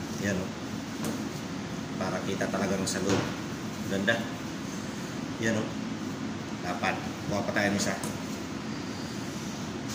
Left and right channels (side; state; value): both; identical; correlation 1.00